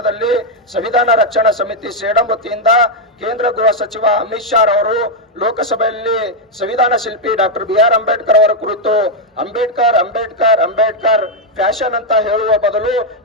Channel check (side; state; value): both; normal; correlation 0.01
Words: ಸಂವಿಧಾನ ರಕ್ಷಣಾ ಸಮಿತಿ ಸೇಡಂ ವತಿಯಿಂದ ಕೇಂದ್ರ ಗೃಹ ಸಚಿವ ಅಮಿತ್ ಶಾ ಅವರು ಲೋಕಸಭೆಯಲ್ಲಿ ಸಂವಿಧಾನ ಶಿಲ್ಪಿ ಡಾಕ್ಟರ್ BR ಅಂಬೇಡ್ಕರ್ ಅವರ ಕುರಿತು ಅಂಬೇಡ್ಕರ್ ಅಂಬೇಡ್ಕರ್ ಅಂಬೇಡ್ಕರ್ ಫ್ಯಾಷನ್ ಅಂತ ಹೇಳುವ ಬದಲು